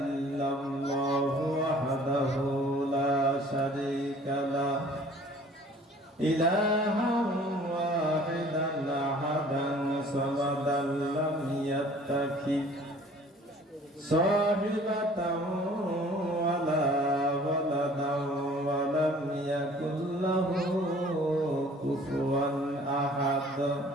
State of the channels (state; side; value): normal; both; correlation 0.51